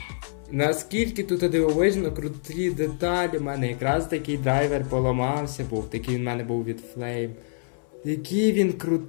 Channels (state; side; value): silent; right; 61 dB below the other